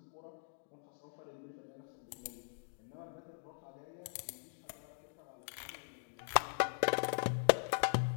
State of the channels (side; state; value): right; silent; digital silence